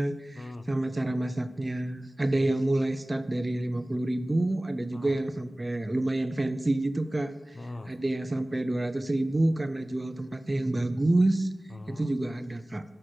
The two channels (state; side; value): normal; both; correlation 0.98